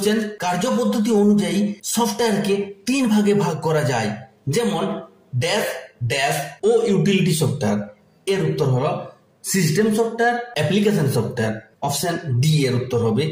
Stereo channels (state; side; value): identical; both; correlation 1.00